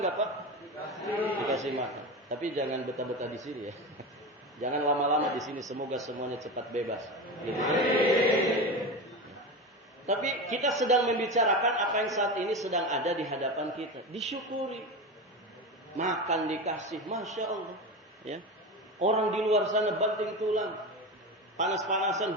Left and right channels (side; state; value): both; normal; correlation 0.23